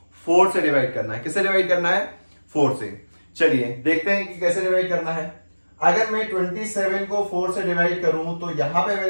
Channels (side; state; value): both; inverted; correlation -1.00